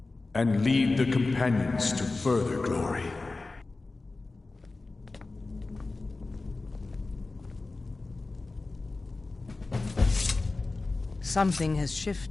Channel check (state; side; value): quieter; right; 3.5 dB